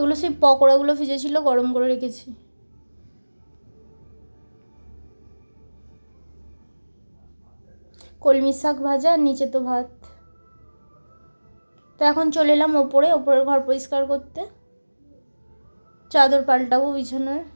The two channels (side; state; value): both; inverted; correlation -1.00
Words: সেই পকোড়াগুলো ভিজেছিল, গরম করে রেখেছি। কলমি শাক ভাজা, আর নিচে তো ভাত। তো এখন চলে এলাম ওপরের ঘর পরিষ্কার করতে, চাদর পাল্টাবো বিছানার।